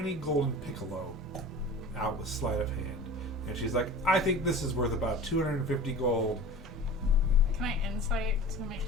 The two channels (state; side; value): normal; both; correlation 0.37